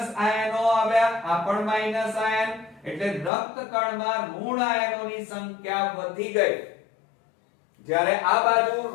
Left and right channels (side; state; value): right; drops out; at 3.3 s